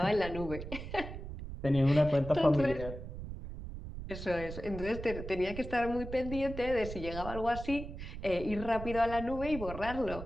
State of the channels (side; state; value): right; noise; rumble, 9 dB below the sound